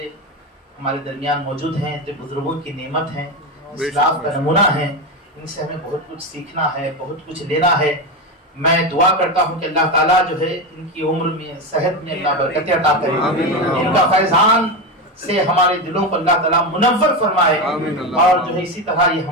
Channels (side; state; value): both; normal; correlation 0.16